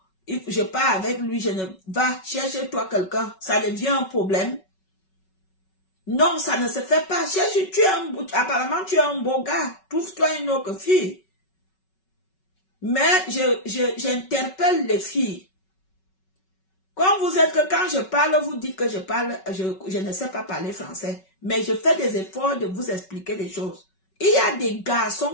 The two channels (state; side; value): late; right; 5.3 ms